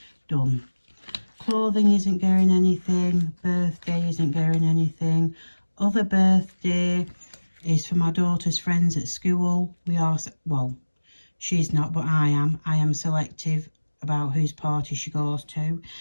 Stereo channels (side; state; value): both; inverted; correlation -1.00